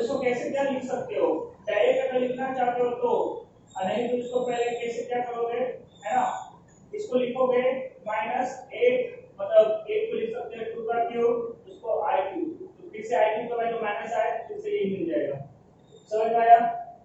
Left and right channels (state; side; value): identical; both; correlation 1.00